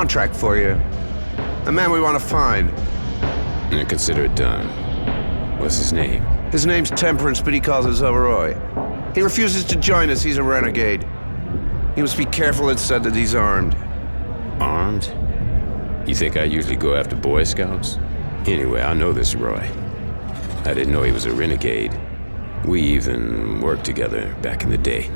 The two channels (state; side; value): inverted; both; correlation -1.00